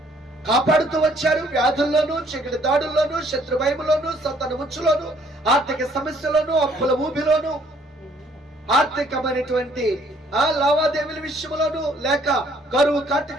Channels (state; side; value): normal; both; correlation 0.63